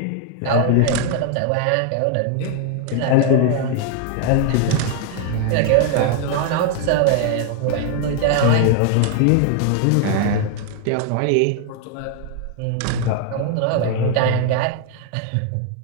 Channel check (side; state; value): both; different; correlation 0.00